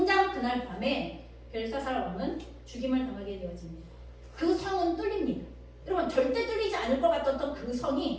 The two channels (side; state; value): both; identical; correlation 1.00